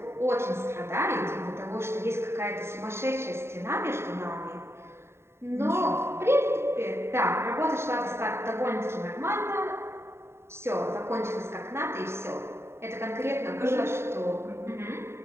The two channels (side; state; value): left; late; 0.12 ms